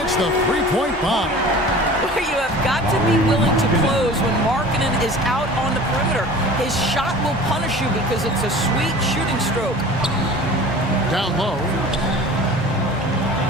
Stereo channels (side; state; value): both; normal; correlation 0.41